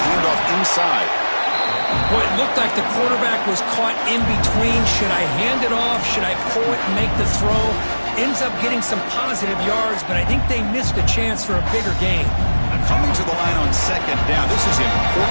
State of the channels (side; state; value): both; inverted; correlation -1.00